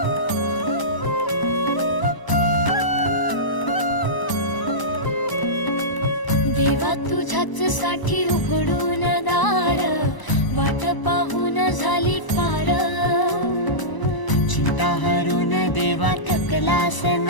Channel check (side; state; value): right; late; 1.0 ms